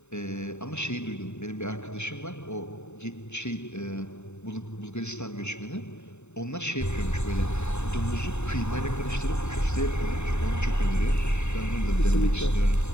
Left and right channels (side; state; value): right; late; 0.82 ms